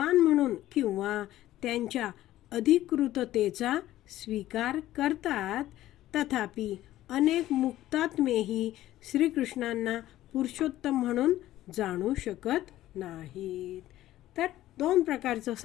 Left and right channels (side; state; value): right; quieter; 14.5 dB